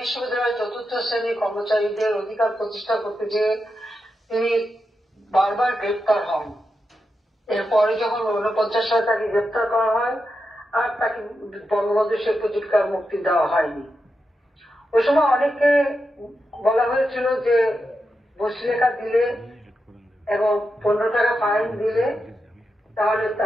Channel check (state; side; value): normal; both; correlation 0.87